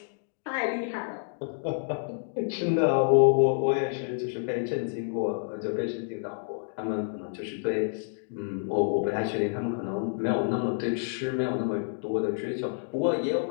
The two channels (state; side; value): silent; right; digital silence